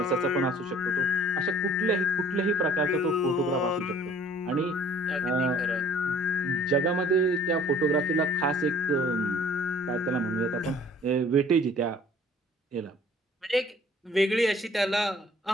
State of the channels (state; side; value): normal; both; correlation 0.53